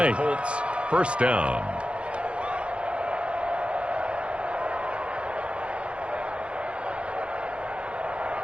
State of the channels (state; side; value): late; left; 0.060 ms